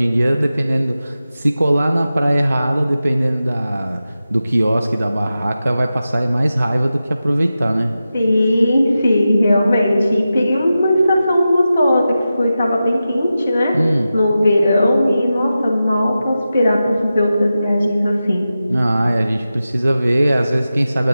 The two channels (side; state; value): both; inverted; correlation -0.92